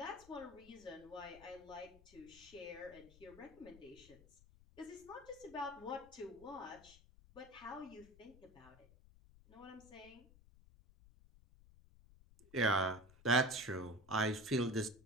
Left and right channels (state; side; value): noise; left; rumble, 22 dB below the sound